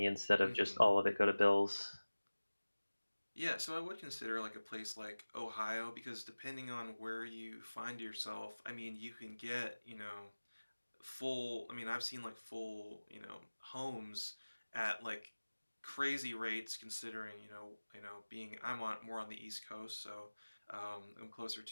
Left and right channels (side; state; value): both; inverted; correlation -1.00